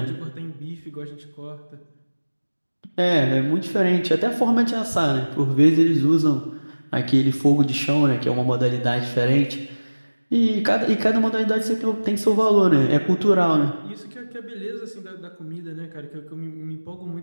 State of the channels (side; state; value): both; inverted; correlation -1.00